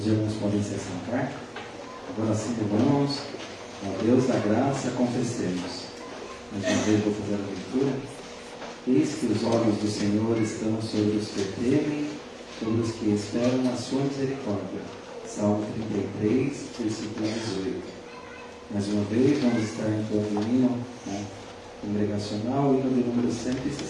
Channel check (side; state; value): both; identical; correlation 1.00